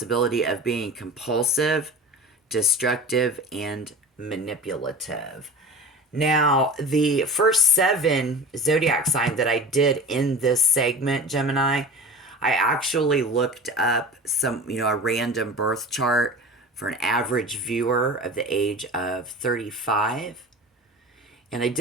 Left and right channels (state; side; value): normal; both; correlation 0.35